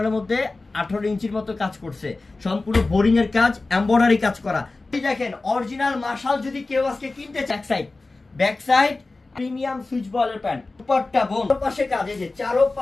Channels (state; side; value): quieter; right; 3.4 dB